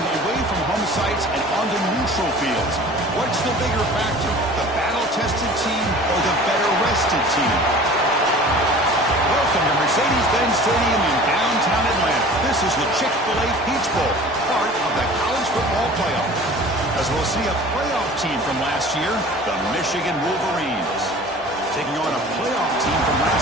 away from home sites and onto neutral fields. What's the bigger factor, the battle-tested team or the better-rested team? Welcome to Mercedes-Benz Stadium in downtown Atlanta. This is the Chick-fil-A Peach Bowl, part of the college football playoff. As we'll see a playoff team from last year, the Michigan Wolverines, taking on a playoff team from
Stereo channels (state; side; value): normal; both; correlation 0.43